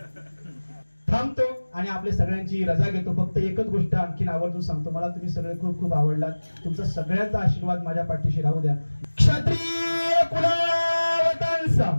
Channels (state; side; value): inverted; both; correlation -1.00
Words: थांबतो आणि आपल्या सगळ्यांची रजा घेतो. फक्त एकच गोष्ट आणखीन आवर्जून सांगतो, मला तुम्ही सगळे खूप खूप आवडलात. तुमचा सगळ्यांचा आशीर्वाद माझ्या पाठीशी राहू द्या. क्षत्रिय कुलावतंस